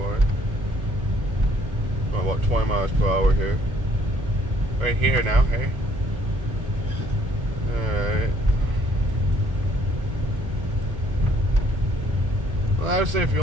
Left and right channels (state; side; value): late; left; 1.2 ms